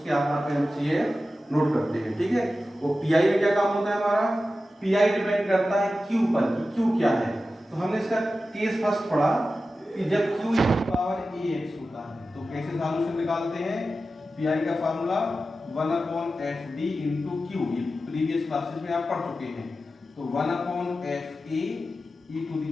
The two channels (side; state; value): both; normal; correlation 0.93